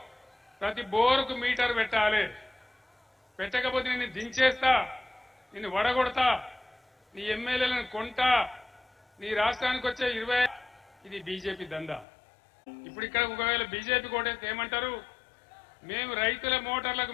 ప్రతి బోరుకు మీటర్ పెట్టాలి, పెట్టకపోతే నిన్ను దించేస్తా, నిన్ను వడగొడతా, నీ ఎమ్మెల్యేలను కొంటా, నీ రాష్ట్రానికి వచ్చే 20 ఇది బీజేపీ దందా. ఇప్పుడు ఇక్కడ ఒకవేళ బీజేపీ కోటేస్తే ఏమంటారు? మేము రైతుల మోటార్లకు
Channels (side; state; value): right; drops out; at 12.1 s